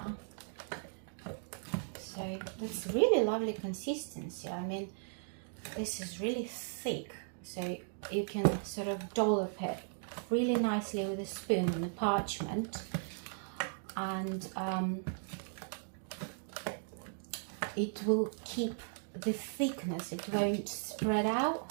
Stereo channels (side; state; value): left; silent; digital silence